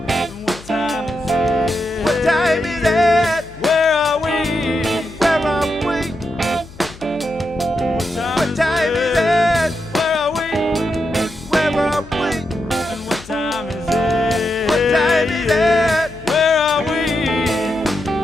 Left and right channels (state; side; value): noise; left; hum, 19 dB below the sound